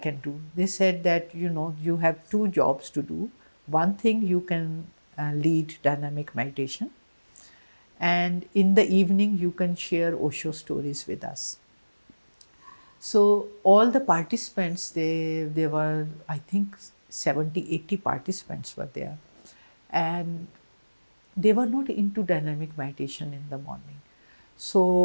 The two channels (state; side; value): inverted; both; correlation -1.00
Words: do? They said that, you have two jobs to do. One thing, you can lead dynamic meditation, and in the evening you can share Osho stories with us. So all the participants, they were, I think, 70, 80 participants were there, and they were not into dynamic meditation in the morning.